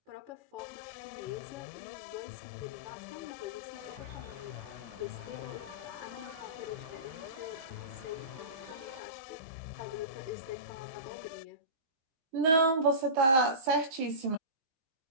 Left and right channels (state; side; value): late; left; 19 ms